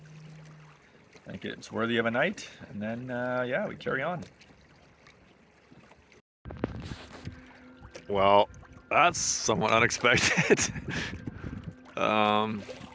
I think it's worthy of a night, and then yeah, we carry on. Well, that's somewhat unexpected. Yeah,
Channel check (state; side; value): identical; both; correlation 1.00